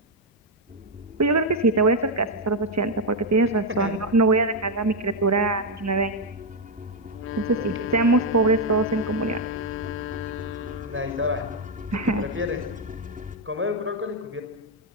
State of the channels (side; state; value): both; normal; correlation 0.02